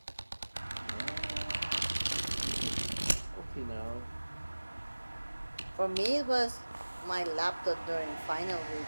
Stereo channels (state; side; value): inverted; both; correlation -1.00